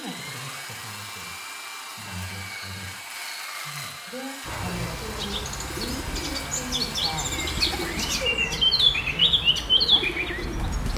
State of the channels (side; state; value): both; identical; correlation 1.00